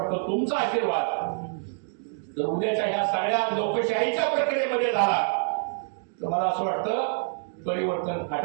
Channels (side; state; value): left; silent; digital silence